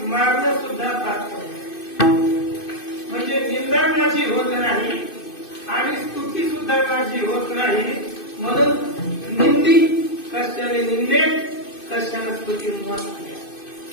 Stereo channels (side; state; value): right; late; 2.6 ms